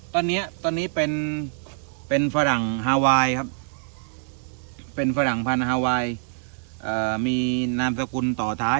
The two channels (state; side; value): silent; left; 59 dB below the other